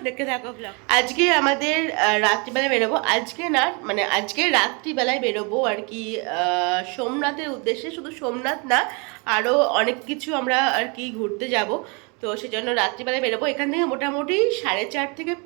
দেখতে থাকো ব্লগ। আজকে আমাদের রাত্রিবেলায় বেরোবো, আজকে না মানে আজকে রাত্রিবেলায় বেরোবো আর কি সোমনাথের উদ্দেশ্যে। শুধু সোমনাথ না, আরও অনেক কিছু আমরা আর কি ঘুরতে যাব, তো সেজন্য রাত্রিবেলায় বেরোবো। এখান থেকে মোটামুটি 4.5 থেকে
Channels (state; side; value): quieter; left; 32.0 dB